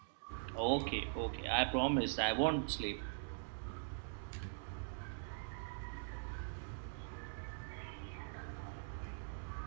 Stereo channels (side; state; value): left; silent; digital silence